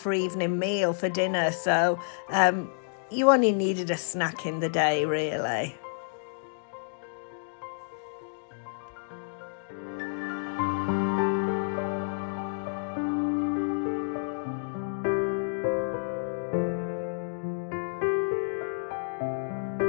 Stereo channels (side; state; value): right; silent; digital silence